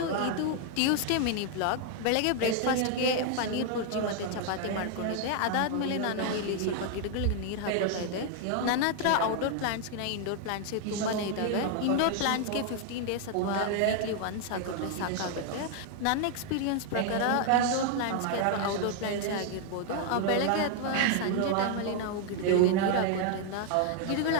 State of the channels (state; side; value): different; both; correlation 0.00